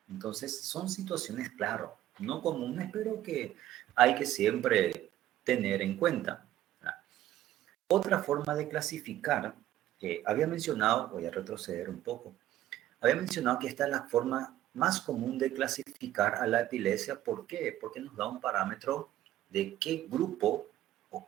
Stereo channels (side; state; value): left; quieter; 13.4 dB